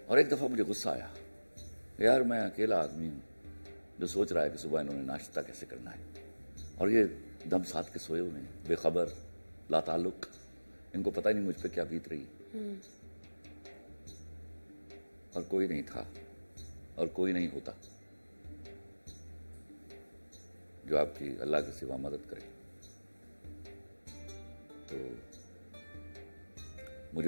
اور ایک دفعہ مجھے غصہ آیا، یار میں اکیلا آدمی ہوں جو سوچ رہا ہے کہ صبح انہوں نے ناشتہ کیسے کرنا ہے، اور یہ دم ساتھ کے سوئے ہوئے ہیں، بے خبر، لا تعلق. ان کو پتہ ہی نہیں مجھ پہ کیا بیت رہی. اور کوئی نہیں تھا اور کوئی نہیں ہوتا جو آپ کی اللہ کے سوا مدد کرے. تو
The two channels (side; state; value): both; inverted; correlation -1.00